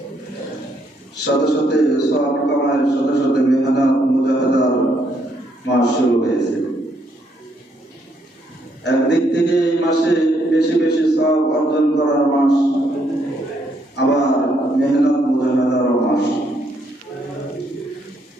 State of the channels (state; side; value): normal; both; correlation 0.73